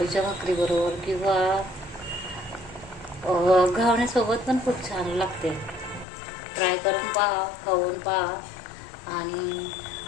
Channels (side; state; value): right; drops out; at 6.1 s